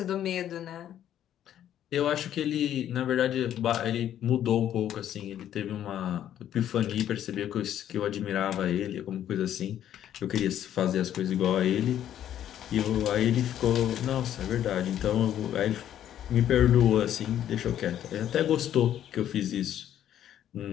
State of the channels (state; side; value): quieter; right; 10.9 dB